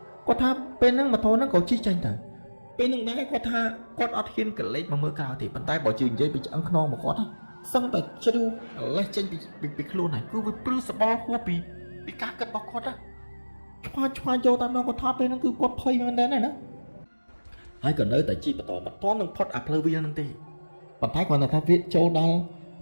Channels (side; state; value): both; inverted; correlation -1.00